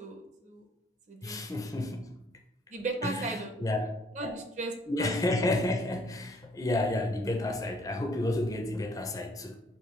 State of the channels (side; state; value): both; normal; correlation 0.63